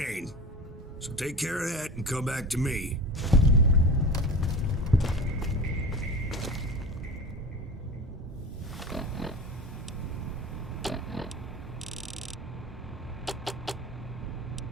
So take care of that and come back to me.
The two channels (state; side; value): normal; both; correlation 0.32